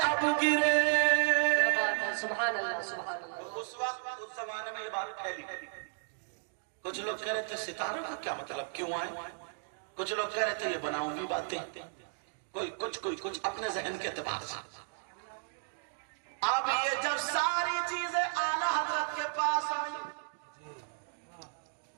اب گرے۔ سبحان اللہ سبحان اللہ۔ اس وقت اس زمانے میں یہ بات پھیلی، کچھ لوگ کہہ رہے تھے ستاروں کا کیا مطلب، کیوں آئے؟ کچھ لوگ کہہ رہے تھے یہ بناؤں گی باتیں، کوئی کچھ اپنے ذہن کے اعتبار سے۔ اب یہ جب ساری چیزیں اعلی حضرت کے پاس آئی،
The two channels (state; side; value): silent; left; digital silence